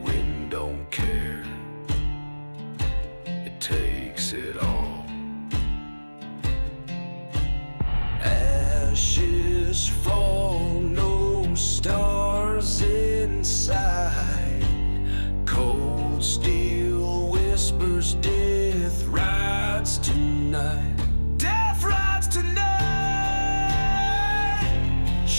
don't care, it takes it all. Ashes fall, no stars inside. Cold steel whispers, death rides tonight. Death rides tonight.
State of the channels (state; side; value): inverted; both; correlation -1.00